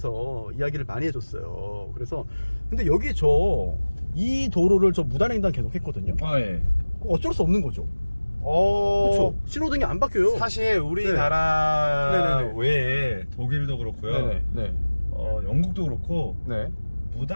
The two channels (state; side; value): inverted; both; correlation -1.00